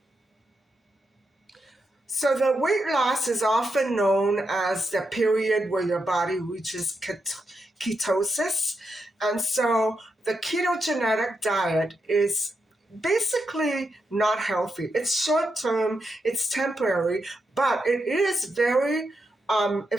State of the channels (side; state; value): both; normal; correlation 0.84